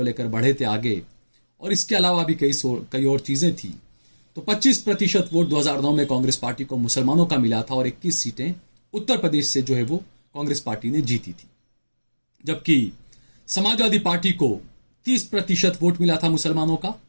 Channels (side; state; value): both; inverted; correlation -1.00